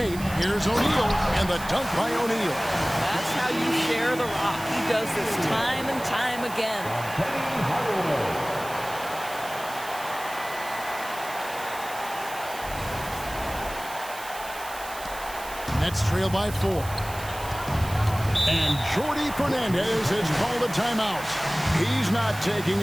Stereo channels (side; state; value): right; noise; hiss, 14 dB below the sound